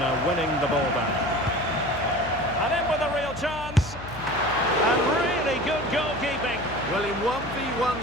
winning the ball back. And in with a real chance. And really good goalkeeping. Well, in 1v1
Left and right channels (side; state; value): left; noise; hum, 14 dB below the sound